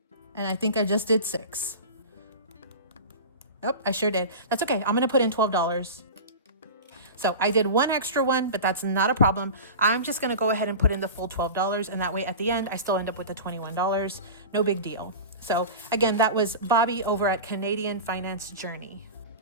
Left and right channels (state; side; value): inverted; both; correlation -0.30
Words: And I think I just did 6. Yep, I sure did. That's okay. I'm going to put in $12. So I did one extra one, but that's not a problem. I'm just going to go ahead and put in the full $12. And that way at the end, I still end up with the $21. No big deal. So again, that was Bobby over at Canadian Finance Journey.